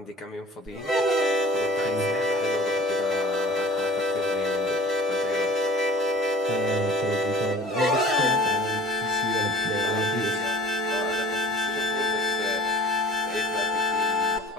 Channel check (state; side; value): normal; both; correlation 0.46